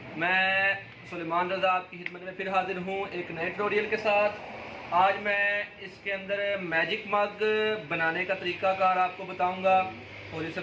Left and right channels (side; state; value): both; identical; correlation 1.00